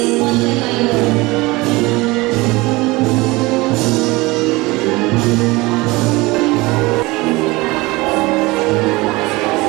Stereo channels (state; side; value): quieter; left; 22.3 dB